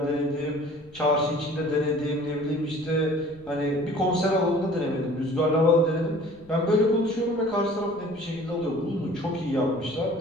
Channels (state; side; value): noise; left; rumble, 25 dB below the sound